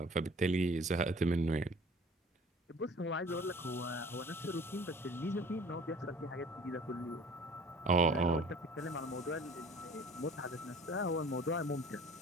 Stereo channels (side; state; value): both; normal; correlation 0.49